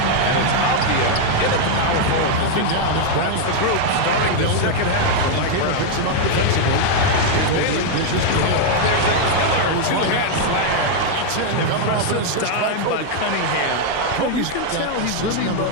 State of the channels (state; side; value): different; both; correlation 0.00